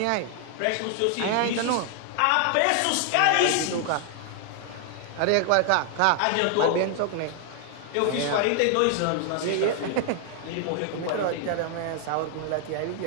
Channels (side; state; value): both; different; correlation 0.00